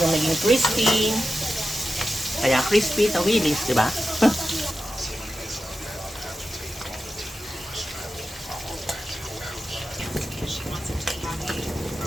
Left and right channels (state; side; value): normal; both; correlation 0.91